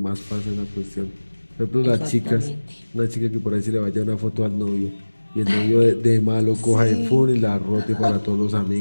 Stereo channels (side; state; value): both; inverted; correlation -1.00